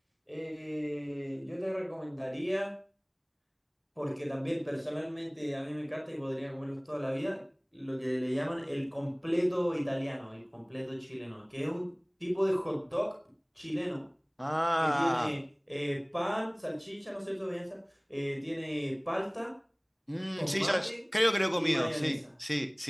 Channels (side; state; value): both; identical; correlation 1.00